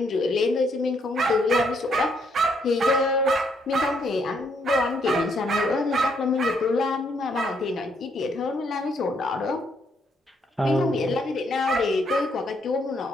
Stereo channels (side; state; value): both; normal; correlation 0.72